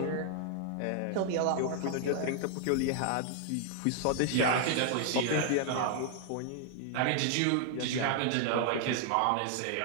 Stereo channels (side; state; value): both; different; correlation 0.00